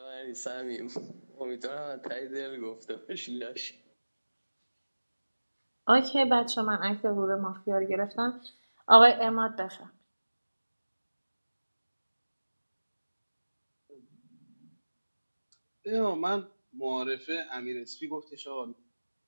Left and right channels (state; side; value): inverted; both; correlation -1.00